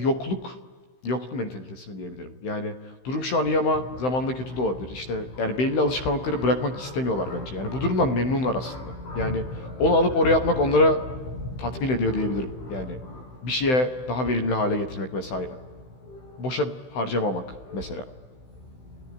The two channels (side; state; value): right; late; 16 ms